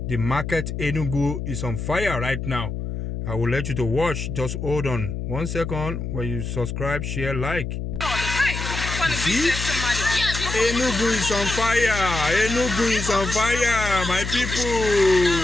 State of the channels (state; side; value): noise; left; hum, 5 dB below the sound